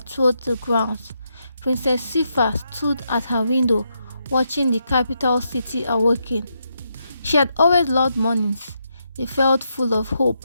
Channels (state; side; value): inverted; both; correlation -0.81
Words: the grounds. Princess Sifa stood at her window, watching the capital city awaken. She had always loved mornings. They felt full of hope,